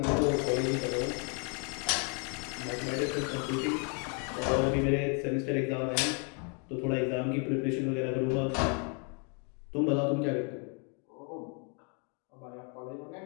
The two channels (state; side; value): quieter; right; 37.8 dB